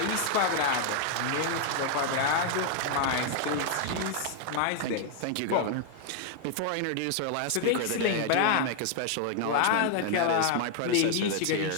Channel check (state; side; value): different; both; correlation 0.00